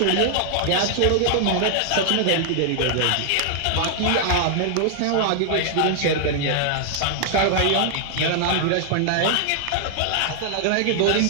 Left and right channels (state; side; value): different; both; correlation 0.00